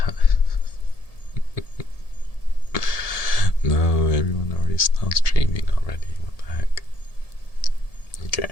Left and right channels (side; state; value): right; late; 1.7 ms